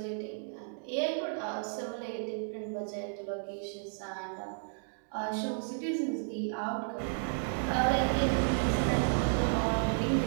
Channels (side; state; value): left; silent; digital silence